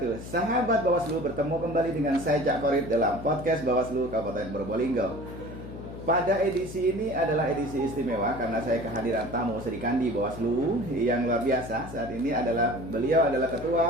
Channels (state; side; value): noise; left; hum, 12 dB below the sound